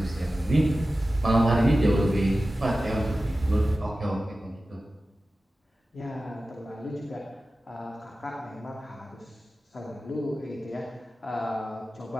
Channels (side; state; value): both; normal; correlation 0.95